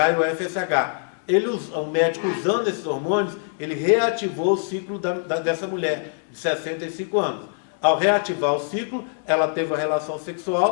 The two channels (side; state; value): right; silent; 63 dB below the other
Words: e o FSH. O médico, usando esses hormônios, ele reativou o ciclo dessa mulher de 65 anos. Ao reativar o ciclo, ela teve uma relação